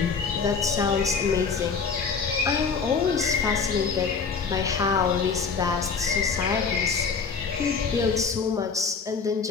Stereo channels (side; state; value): right; quieter; 5.4 dB